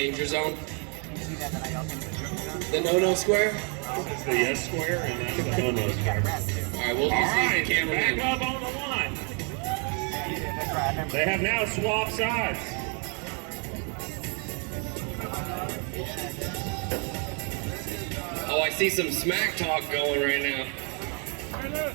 zone? The no-no square? It's the yes square and that's the no-no square. Alright, we'll All just use right, the camera back in. up on the line. They have now swapped sides. Oh, I see some smack talk going right now.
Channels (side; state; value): left; quieter; 36.9 dB